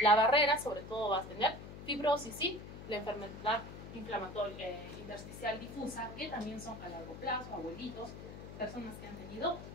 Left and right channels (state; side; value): noise; left; hum, 12 dB below the sound